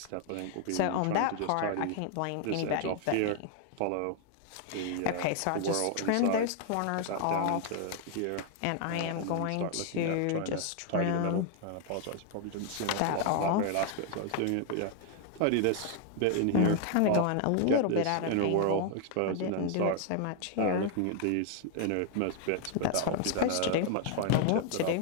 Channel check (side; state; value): both; different; correlation 0.00